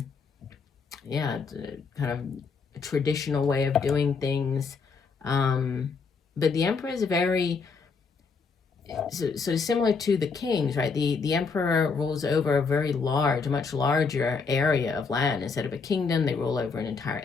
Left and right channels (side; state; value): right; quieter; 5.0 dB